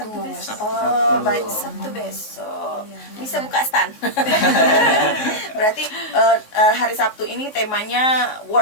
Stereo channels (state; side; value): late; right; 3.6 ms